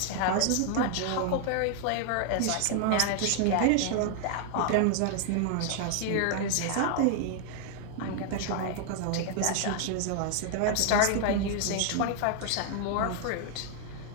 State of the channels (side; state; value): both; different; correlation 0.00